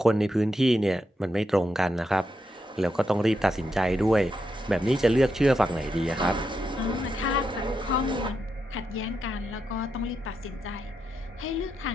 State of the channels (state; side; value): normal; both; correlation 0.84